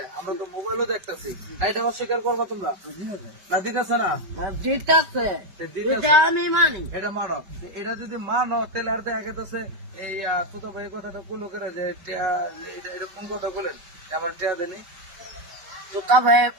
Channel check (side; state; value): left; late; 5.1 ms